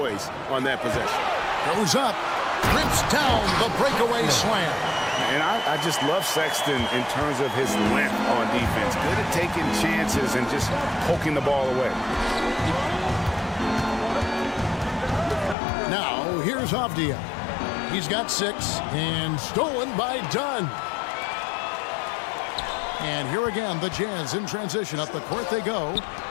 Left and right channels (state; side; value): drops out; right; at 15.6 s